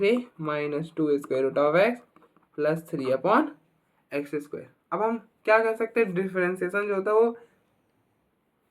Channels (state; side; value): identical; both; correlation 1.00